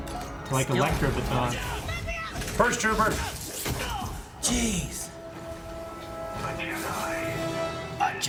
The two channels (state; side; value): identical; both; correlation 1.00